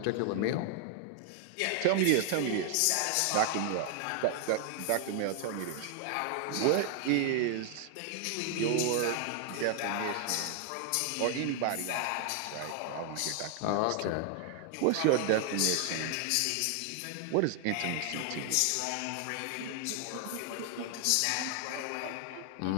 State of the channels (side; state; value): both; different; correlation 0.00